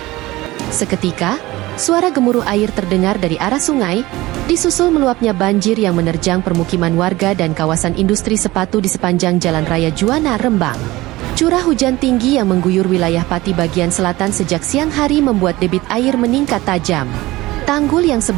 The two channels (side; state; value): left; quieter; 19.0 dB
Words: Seketika, suara gemuruh air terdengar dari arah sungai, disusul meluapnya banjir yang menerjang permukiman warga dan kawasan industri sepatu di sepanjang Jalan Raya Juwana, Rembang. Curah hujan tinggi yang mengguyur wilayah Pati bagian selatan sejak siang hari membuat debit air meningkat tajam. Tanggul yang